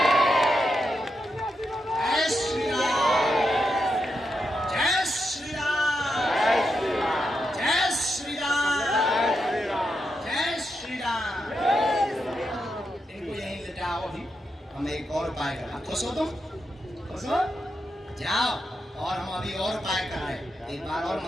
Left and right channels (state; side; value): normal; both; correlation 0.85